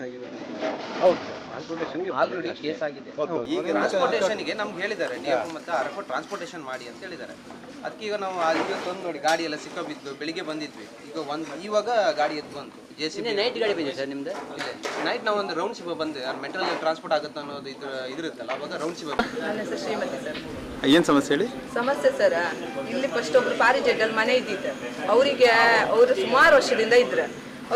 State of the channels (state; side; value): identical; both; correlation 1.00